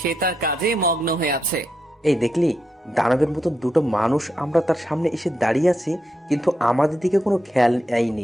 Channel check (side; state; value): both; normal; correlation 0.83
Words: তার কাজে মগ্ন হয়ে আছে। এই দেখলি, দানবের মতো দুটো মানুষ আমরা তার সামনে এসে দাঁড়িয়ে আছি, কিন্তু আমাদের দিকে কোনো খেয়াল